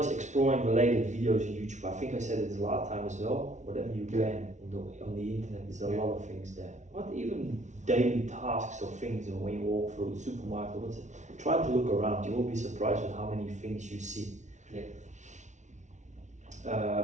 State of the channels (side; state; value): left; late; 0.35 ms